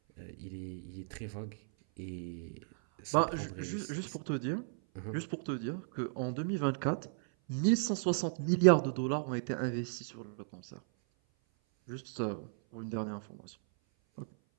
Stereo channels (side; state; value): left; silent; 54 dB below the other